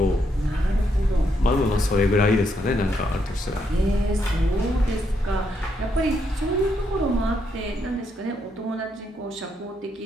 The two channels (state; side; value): normal; both; correlation 0.77